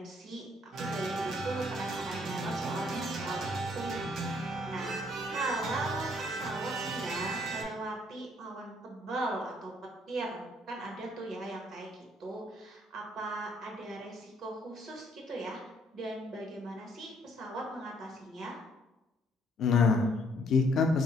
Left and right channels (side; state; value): both; normal; correlation 0.66